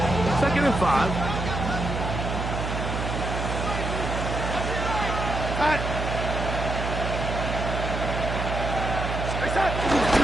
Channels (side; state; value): right; noise; hum, 3 dB below the sound